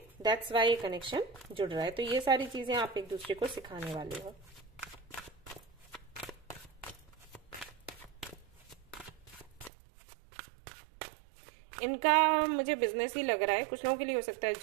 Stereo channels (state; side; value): drops out; left; at 9.7 s